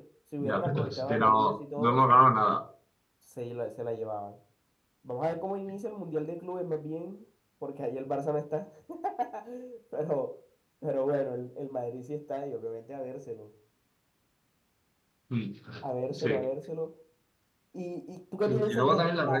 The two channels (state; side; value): identical; both; correlation 1.00